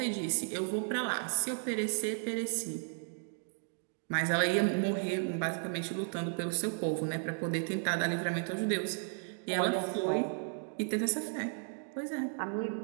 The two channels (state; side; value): silent; left; 55 dB below the other